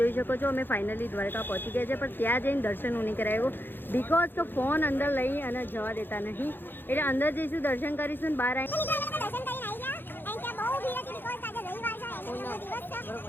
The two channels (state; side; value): late; right; 0.098 ms